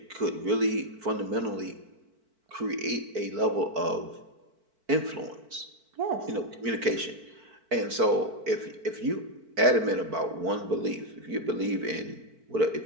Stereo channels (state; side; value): late; left; 4.5 ms